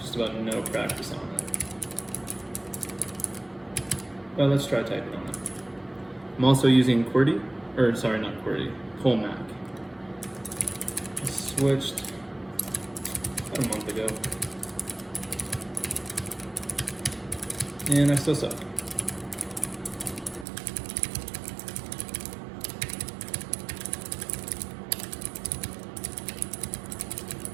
just about no practice on it. But let's try typing on it. I'm also using QWERTY, or sorry, not QWERTY, colemak. I switched about a month ago, and I still suck.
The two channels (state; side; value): drops out; left; at 20.5 s